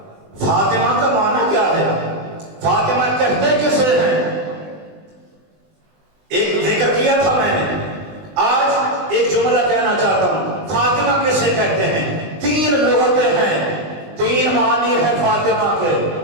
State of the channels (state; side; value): late; left; 20 ms